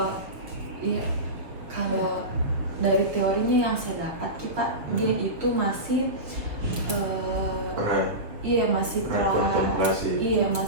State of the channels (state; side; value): late; left; 6.7 ms